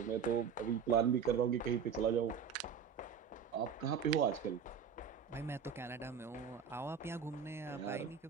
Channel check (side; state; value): left; quieter; 7.1 dB